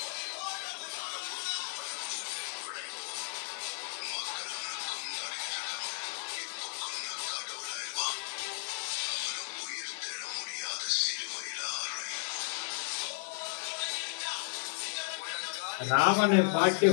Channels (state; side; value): silent; right; digital silence